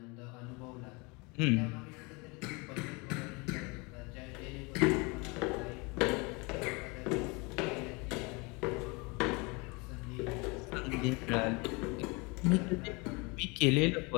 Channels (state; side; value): quieter; right; 28.0 dB